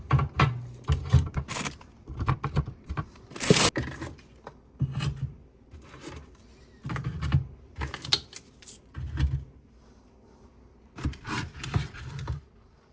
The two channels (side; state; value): both; identical; correlation 1.00